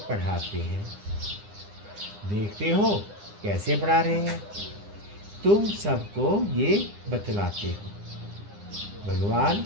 पढ़ाते हैं। देखते हो कैसे पढ़ा रहे हैं, तुम सबको ये बतलाते हो। भगवान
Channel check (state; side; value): late; left; 9.9 ms